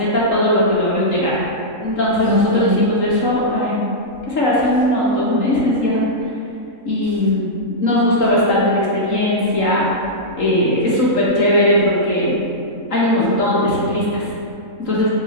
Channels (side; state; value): right; late; 3.8 ms